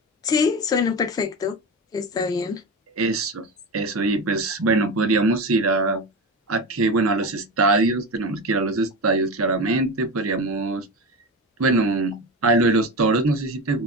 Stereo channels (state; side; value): normal; both; correlation 0.23